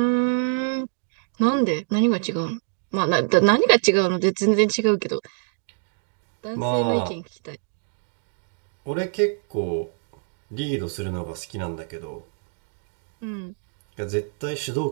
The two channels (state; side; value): silent; left; digital silence